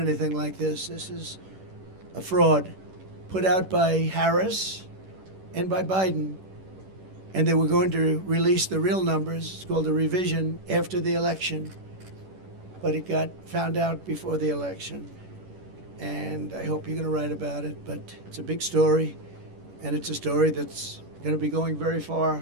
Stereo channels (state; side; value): late; left; 11 ms